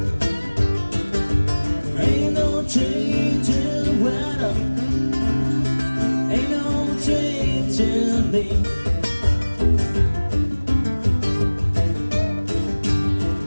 Ain't no change in the weather. Ain't no change in me.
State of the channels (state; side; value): inverted; both; correlation -1.00